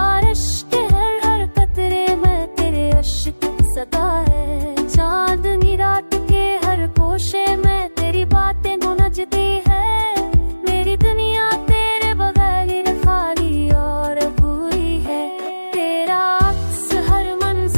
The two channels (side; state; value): both; inverted; correlation -1.00